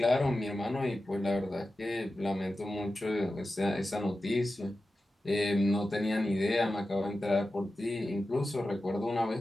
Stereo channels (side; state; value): both; normal; correlation 0.93